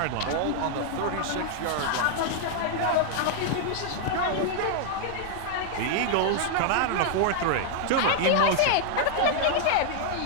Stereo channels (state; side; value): different; both; correlation 0.00